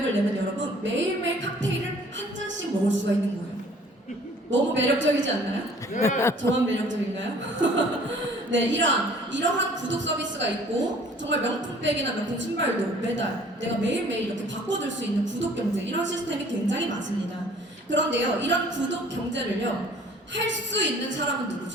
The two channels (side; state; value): both; normal; correlation 0.53